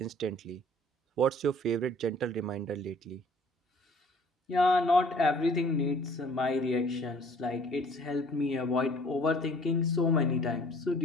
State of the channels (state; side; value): normal; both; correlation 0.54